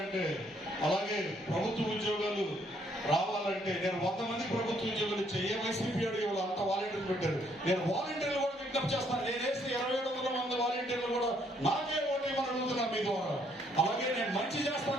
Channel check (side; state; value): both; normal; correlation 0.68